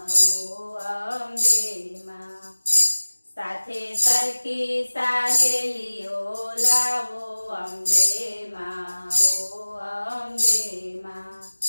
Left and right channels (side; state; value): both; inverted; correlation -1.00